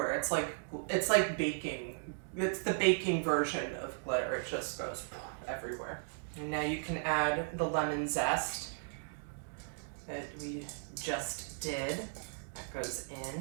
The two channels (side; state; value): left; silent; digital silence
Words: It's like baking. It's the baking version of glitter. It just goes everywhere. And now you can add the lemon zest that we just did. That goes